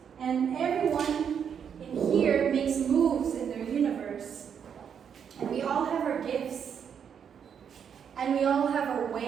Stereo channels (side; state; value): left; quieter; 7.7 dB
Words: and everyone in here makes moves in their universe. And we all have our gifts, and we all have our